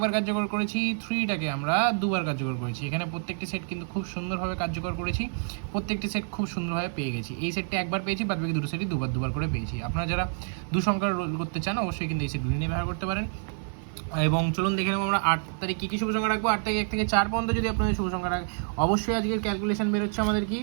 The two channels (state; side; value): silent; left; 59 dB below the other